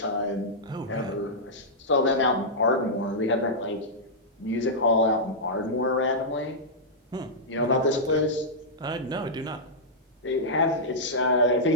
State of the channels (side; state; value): both; normal; correlation -0.10